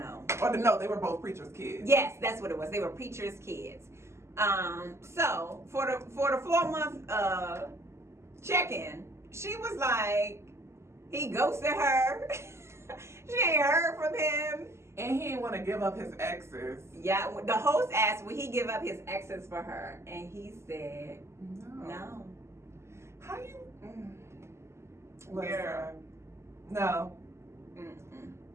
Or no, they were both preachers' kids. Yes, that's what it was. They were preachers' kids. So for the 4-month check-in, she was like, he ghosted her. She ain't heard from him. And he didn't want to give up his exes. Yeah, the host asked, would he give up his exes for her? And he said, no. How you? Girl. No. Mm-mm.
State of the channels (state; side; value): late; left; 0.13 ms